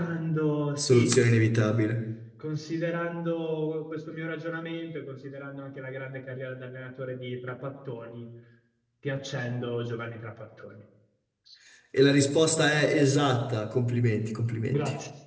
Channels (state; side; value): identical; both; correlation 1.00